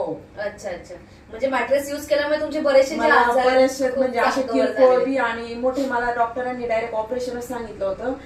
अच्छा अच्छा. म्हणजे मॅट्रेस युज केल्यामुळे तुमचे बरेचसे म्हणजे असे किरकोळ बी आणि मोठे, मला डॉक्टरांनी डायरेक्ट ऑपरेशनच सांगितलं होतं,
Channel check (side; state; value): both; identical; correlation 1.00